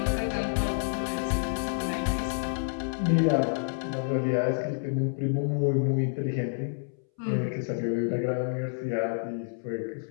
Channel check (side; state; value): right; silent; 59 dB below the other